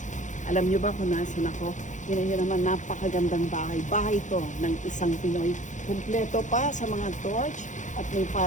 Alam niyo ba kung nasan ako? Yun naman, napakagandang bahay. Bahay to ng isang Pinoy. Kumpleto pa sa mga torch at may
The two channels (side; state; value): right; late; 0.36 ms